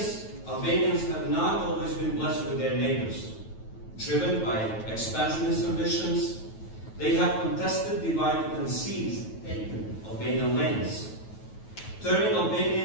have not always been blessed with their neighbors. Driven by expansionist ambitions, They have contested, divided, and seized, taken Albanian lands, turning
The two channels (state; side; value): late; right; 9.2 ms